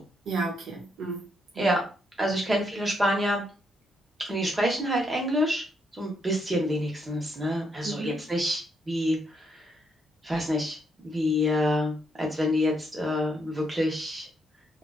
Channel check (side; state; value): both; normal; correlation 0.76